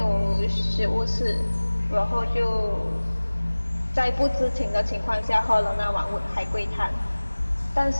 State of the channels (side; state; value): both; inverted; correlation -1.00